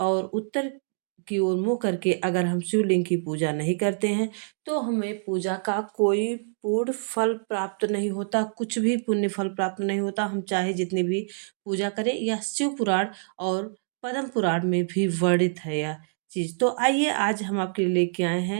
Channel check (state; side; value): silent; left; digital silence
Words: और उत्तर की ओर मुँह करके अगर हम शिवलिंग की पूजा नहीं करते हैं, तो हमें पूजा का कोई पूर्ण फल प्राप्त नहीं होता, कुछ भी पुण्य फल प्राप्त नहीं होता। हम चाहे जितनी भी पूजा करें, यह शिव पुराण और पद्म पुराण में भी वर्णित है यह चीज़। तो आइए आज हम आपके लिए लेके आए